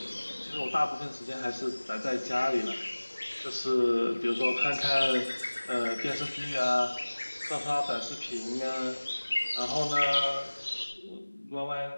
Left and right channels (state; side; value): inverted; both; correlation -1.00